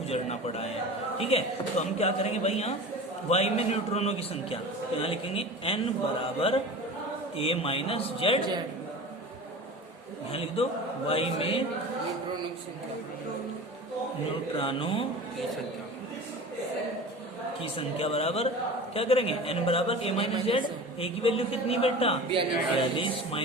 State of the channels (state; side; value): normal; both; correlation 0.35